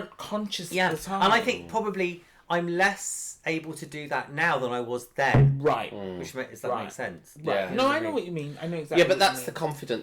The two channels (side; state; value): both; identical; correlation 1.00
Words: conscious at the time. And I think probably I'm less able to do that now than I was then. Right. Which does that make sense? Right. Yeah. No, I know what you mean. I know exactly Yeah, but what that's you the mean.